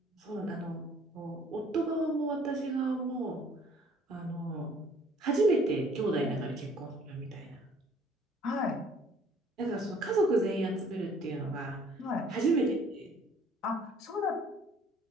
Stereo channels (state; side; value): normal; both; correlation 0.58